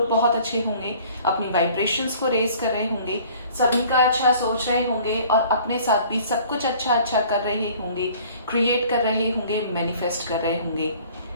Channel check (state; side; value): inverted; both; correlation -0.51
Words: बहुत अच्छे होंगे, अपनी वाइब्रेशंस को रेज कर रहे होंगे, सभी का अच्छा सोच रहे होंगे और अपने साथ भी सब कुछ अच्छा अच्छा कर रहे होंगे, क्रिएट कर रहे होंगे, मैनिफेस्ट कर रहे होंगे